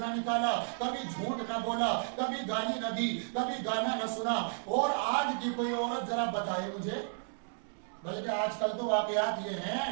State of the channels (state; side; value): silent; left; digital silence